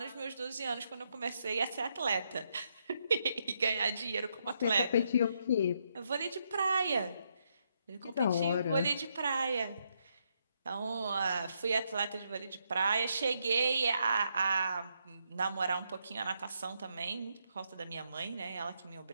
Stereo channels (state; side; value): inverted; both; correlation -0.78